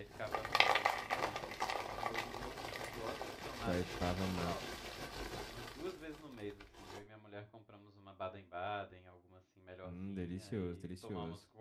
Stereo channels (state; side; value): identical; both; correlation 1.00